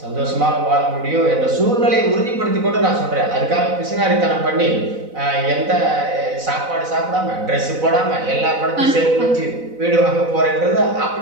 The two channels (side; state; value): left; late; 4.0 ms